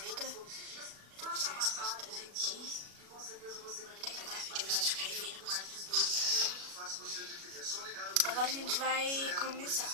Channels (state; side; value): late; left; 36 ms